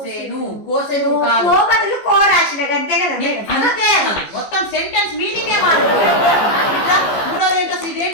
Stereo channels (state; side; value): late; right; 15 ms